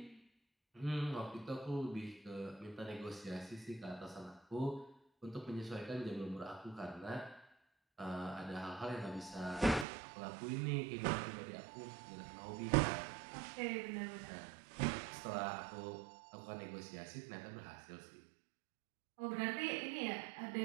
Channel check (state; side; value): drops out; left; at 9.9 s